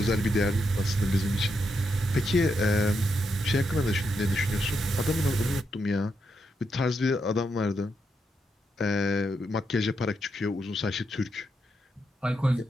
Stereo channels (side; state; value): both; normal; correlation 0.82